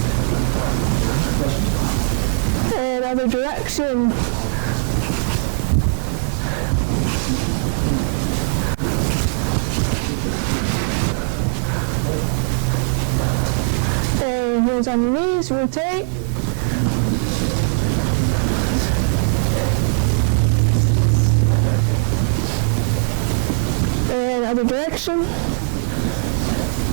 And other direction. And hands on your knees, rotate. And other direction.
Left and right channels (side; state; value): left; silent; digital silence